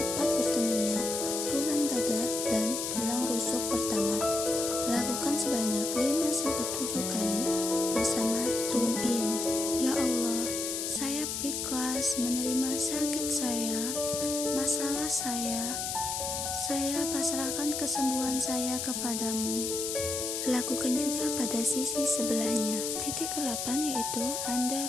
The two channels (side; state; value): left; noise; hiss, 2 dB below the sound